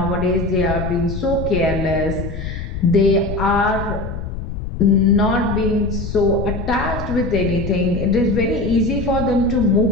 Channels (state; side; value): noise; left; rumble, 6 dB below the sound